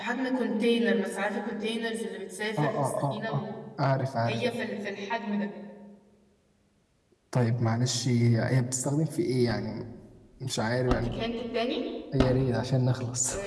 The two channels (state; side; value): identical; both; correlation 1.00